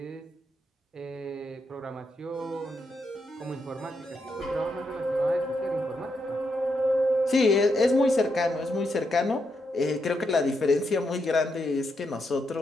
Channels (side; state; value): both; normal; correlation 0.81